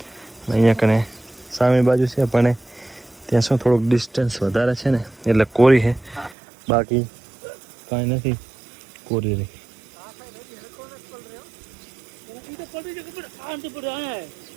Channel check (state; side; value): drops out; left; at 6.4 s